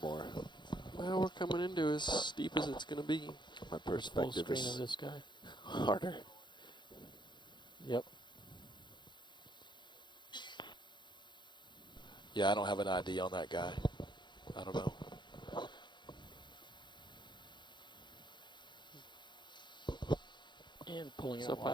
more. Well, we're coming into as steep as it's going to be. My Full perspective screen is of this guy. harder. Yep. Yeah, I don't have an ID on that guy. I don't know. And pulling So out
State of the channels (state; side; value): late; right; 0.22 ms